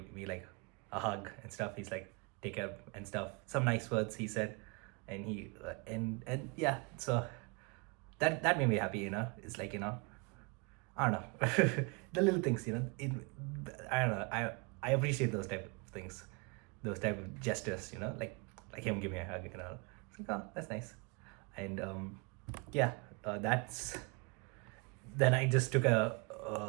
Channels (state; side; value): quieter; left; 30.5 dB